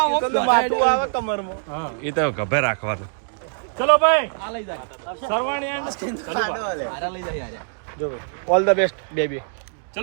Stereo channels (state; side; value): silent; left; digital silence